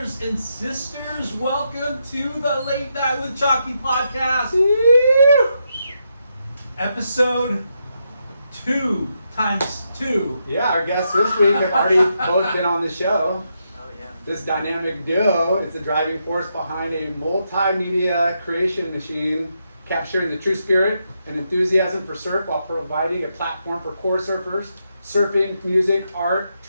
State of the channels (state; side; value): inverted; both; correlation -0.82